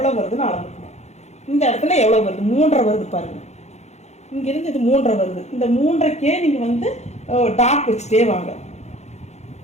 வருதுன்னு அளந்துக்கணும். இந்த இடத்துல எவ்வளவு வருது, 3.5 வருது பாருங்க. இங்க இருந்து இது 3.5 வருது. இந்த 3.5க்கே நீங்க வந்து டாட் வச்சுட்டே வாங்க.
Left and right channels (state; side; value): late; right; 0.32 ms